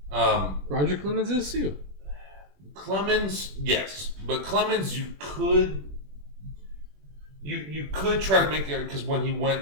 Roger Clemens is too. Clemens, yes, but Clemens, you could try to make it because when he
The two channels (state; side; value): late; left; 21 ms